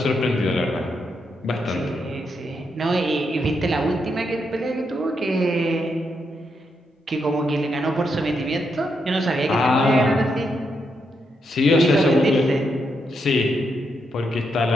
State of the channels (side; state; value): both; normal; correlation 0.81